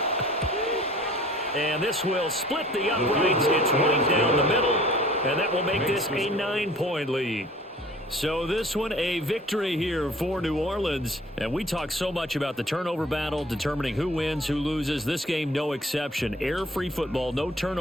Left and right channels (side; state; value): both; normal; correlation 0.50